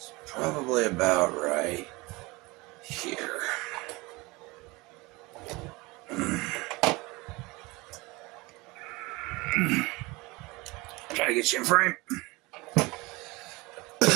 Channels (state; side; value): quieter; left; 23.7 dB